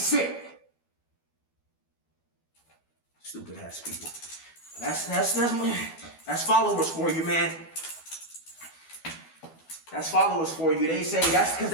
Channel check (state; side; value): late; right; 12 ms